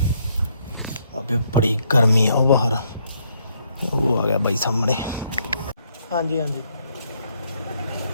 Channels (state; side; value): inverted; both; correlation -0.72